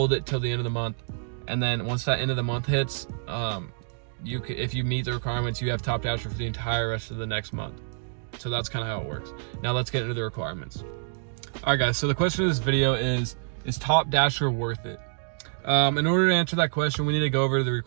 it till the end of the month. And then once that end of the month hits, if you meet the requirements, you have Top Dasher for the entire rest of the next month. So that's kind of how it works. Now let's get into the requirements. All right, guys, so the question of this video is Top Dasher worth it? In order to answer that question, we need to go over the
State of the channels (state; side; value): silent; left; 60 dB below the other